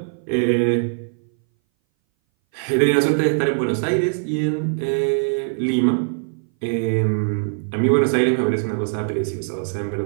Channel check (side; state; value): left; silent; 60 dB below the other